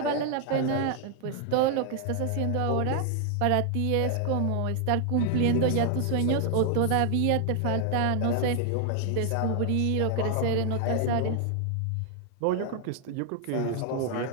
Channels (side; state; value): both; different; correlation 0.00